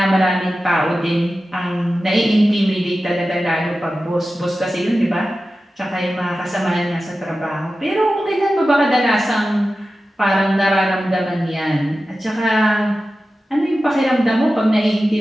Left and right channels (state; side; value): normal; both; correlation 0.94